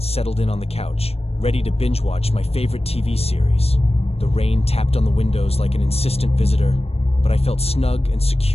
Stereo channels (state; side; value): late; right; 0.29 ms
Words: settled in on the couch, ready to binge-watch my favorite TV series. The rain tapped on the windows like an insistent visitor, but I felt snug and